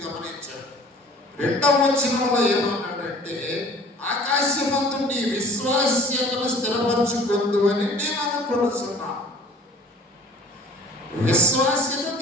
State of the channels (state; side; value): normal; both; correlation 0.48